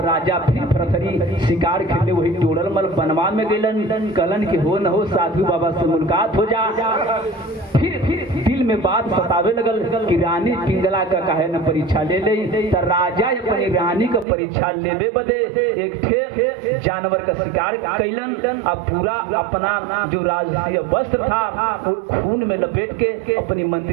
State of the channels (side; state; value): left; drops out; at 14.2 s